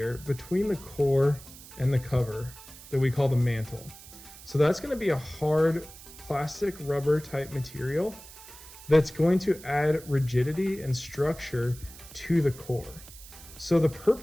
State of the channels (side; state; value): right; noise; hiss, 18 dB below the sound